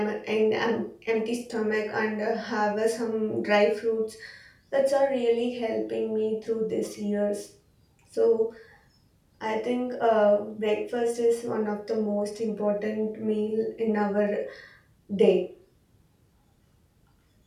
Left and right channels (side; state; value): both; identical; correlation 1.00